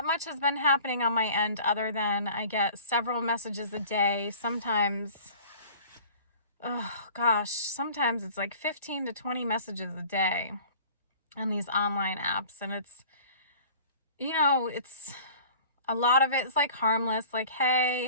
much has been happening on my end other than I get several messages a day. Sometimes, sometimes it's like 15 to 20 messages a day on these online apps. And it's a lot of it is like harmless, like, hey,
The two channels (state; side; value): inverted; both; correlation -0.45